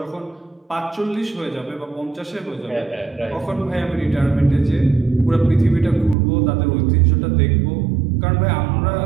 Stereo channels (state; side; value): drops out; left; at 6.2 s